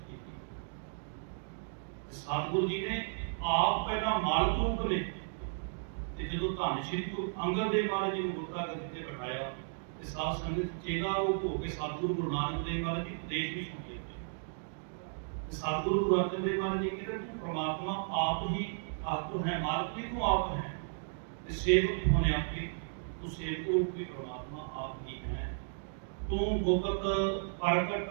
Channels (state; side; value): silent; left; digital silence